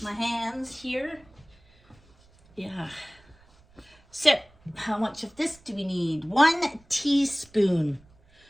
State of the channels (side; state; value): right; noise; rumble, 29 dB below the sound